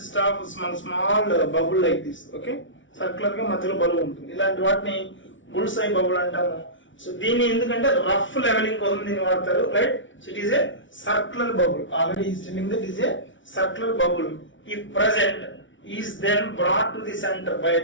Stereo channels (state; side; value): late; right; 0.56 ms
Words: of small bubble like this. Okay, circular గా మధ్యలో బబుల్ ఉంటుంది. ఇలాంటి వాటిని బుల్స్ ఐ బబుల్ అంటాము. సో దీన్ని ఎందుకంటే రఫ్ లెవెలింగ్ కోసం దీన్ని వాడతారు, right. So it is a circular bubble. Already is telling that is a circular bubble. If present is then brought to the center by